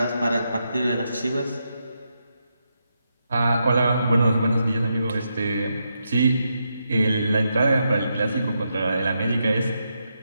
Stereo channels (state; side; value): inverted; both; correlation -0.83